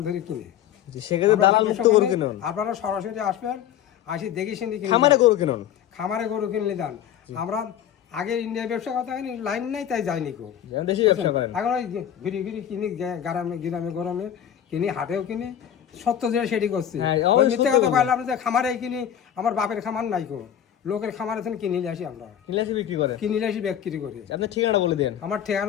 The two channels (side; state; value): right; quieter; 10.0 dB